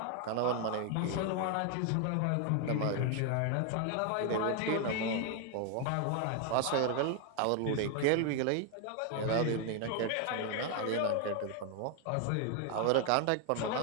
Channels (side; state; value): both; different; correlation 0.01